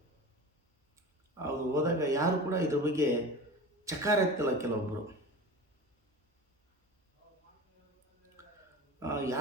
ಅದು ಹೋದಾಗ ಯಾರು ಕೂಡ ಇದ್ರ ಬಗ್ಗೆ ಚಕಾರ ಎತ್ತಲ್ಲ. ಕೆಲವೊಬ್ಬರು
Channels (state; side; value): normal; both; correlation 0.33